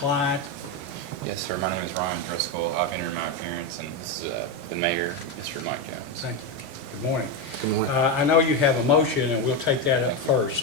Yes, sir. My name is Ron Driscoll. I've entered my appearance, and this is the mayor, Mr. Mike Jones. Thank you. Good morning. Good morning. I know you have a motion, and we'll take that up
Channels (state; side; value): late; left; 15 ms